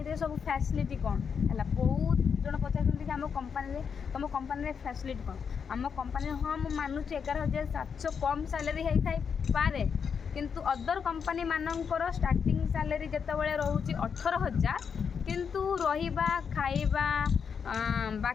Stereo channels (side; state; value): right; quieter; 6.6 dB